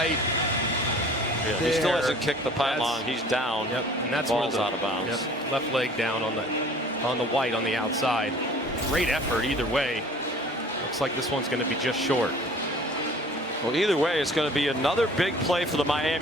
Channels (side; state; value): both; normal; correlation 0.49